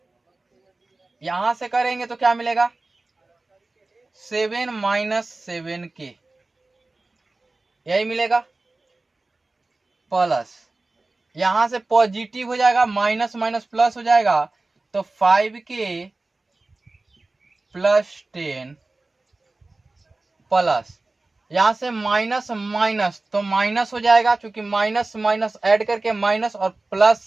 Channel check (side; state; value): left; quieter; 3.2 dB